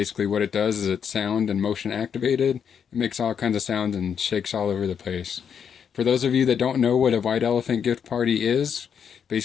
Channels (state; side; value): quieter; right; 7.5 dB